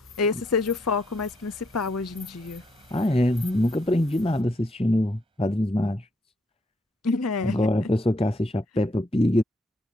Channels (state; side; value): normal; both; correlation 0.74